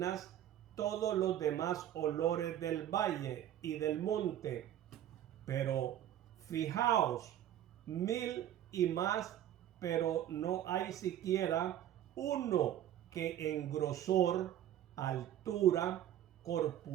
todos los demás olores del valle y del monte. Pero fijaos, 1000 y más, pero no hay siquiera uno que en grosor, altura,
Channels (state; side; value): quieter; left; 11.6 dB